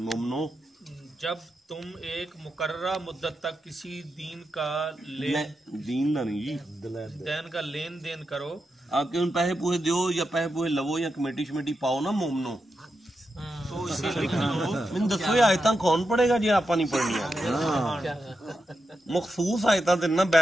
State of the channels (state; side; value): normal; both; correlation 0.87